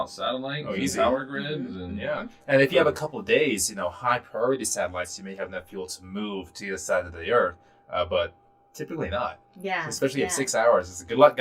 satellites and power grids, and And if you have a couple of days, high priority satellites, you may have enough fuel to move to the other side of the Earth, but typically not. Yeah. Especially at 6 hours. It's good luck,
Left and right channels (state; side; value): identical; both; correlation 1.00